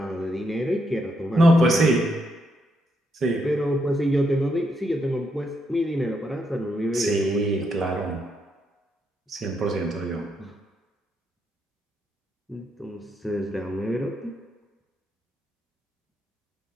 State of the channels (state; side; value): normal; both; correlation 0.78